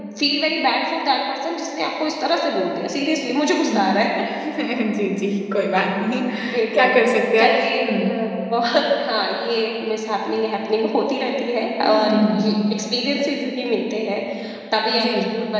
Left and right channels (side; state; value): both; identical; correlation 1.00